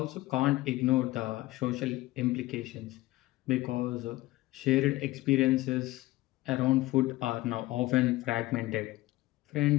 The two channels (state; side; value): quieter; right; 18.3 dB